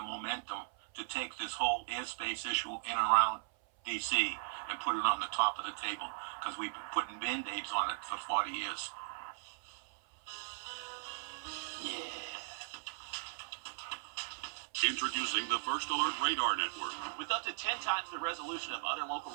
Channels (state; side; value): silent; left; 53 dB below the other